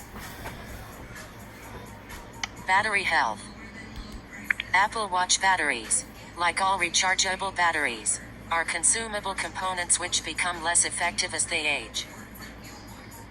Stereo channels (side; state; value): both; identical; correlation 1.00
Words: Battery health. Apple Watch batteries, like all rechargeable batteries, are consumable components which become less effective as they age.